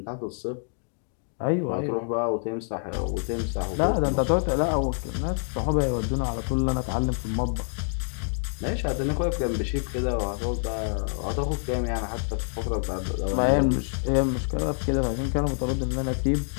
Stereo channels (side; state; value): right; silent; digital silence